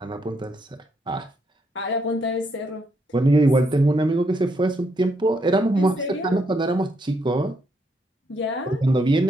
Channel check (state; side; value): normal; both; correlation 0.76